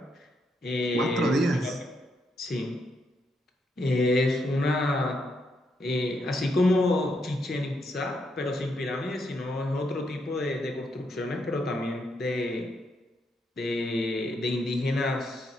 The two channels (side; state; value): both; normal; correlation 0.78